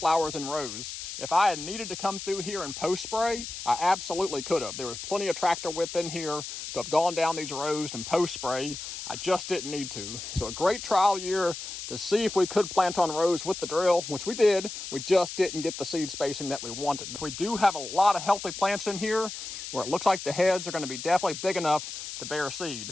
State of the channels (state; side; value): noise; left; hiss, 8 dB below the sound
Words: in rows. If I had needed to come through here and post spray, I absolutely could have. There was plenty of tractor width in here to have gone down these rows and post spray. I just didn't need to. So a great trial year to see if we could plant on rows with the drill, which we did. We just didn't get the seed spacing that we wanted. We do have a lot of healthy plants in here where it looks like the heads are going to be definitely big enough to bear